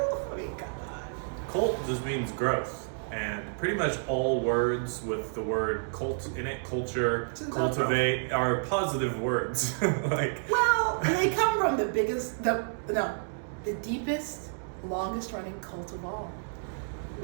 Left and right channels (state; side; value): silent; left; digital silence